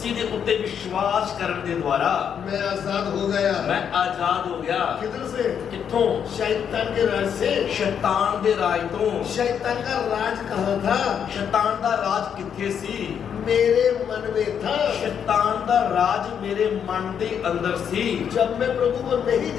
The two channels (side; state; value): right; quieter; 8.0 dB